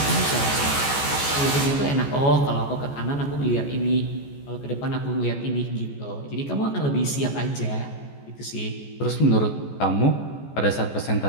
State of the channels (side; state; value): right; late; 14 ms